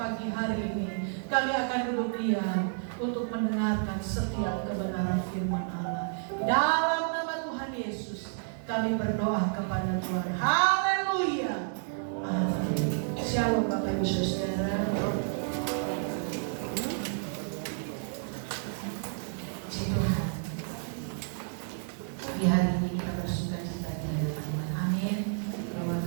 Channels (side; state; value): left; silent; digital silence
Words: hari ini. Kami akan duduk diam untuk mendengarkan setiap kebenaran firman Allah. Dalam nama Tuhan Yesus kami berdoa kepada Tuhan. Haleluya. Amin. Shalom Bapak Ibu Saudara. Puji Tuhan. Di hari ini kita bersuka cita di hadapan Tuhan. Amin. Bahwa